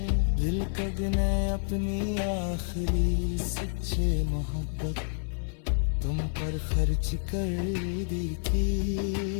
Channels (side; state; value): right; silent; 59 dB below the other